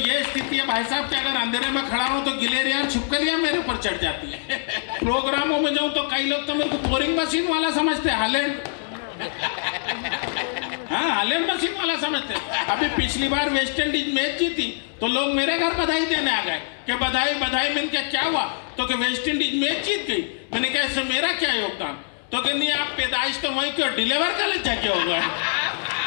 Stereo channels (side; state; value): right; silent; digital silence